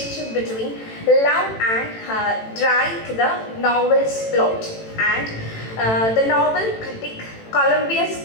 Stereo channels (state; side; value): late; right; 18 ms